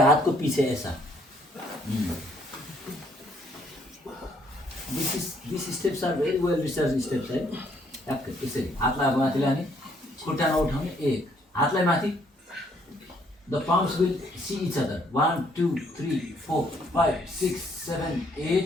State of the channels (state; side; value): normal; both; correlation 0.67